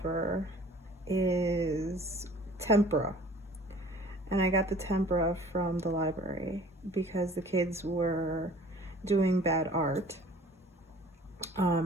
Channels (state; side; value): normal; both; correlation 0.49